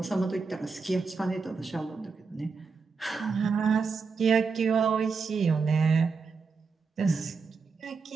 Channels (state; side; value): quieter; left; 4.9 dB